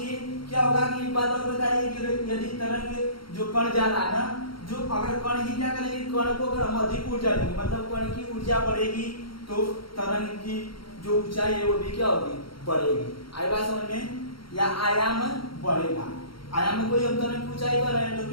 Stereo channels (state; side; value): late; right; 0.73 ms